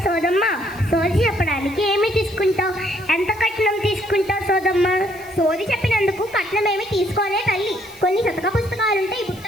సోదమ్మ, సోది చెప్పడానికి ఏమి తీసుకుంటావు? ఎంత కట్నం తీసుకుంటావు సోదమ్మ? సోది చెప్పినందుకు కట్నం ఏమి తీసుకోనే తల్లి. కొన్ని శతక పుస్తకాలుంటే ఈ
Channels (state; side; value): noise; right; hiss, 22 dB below the sound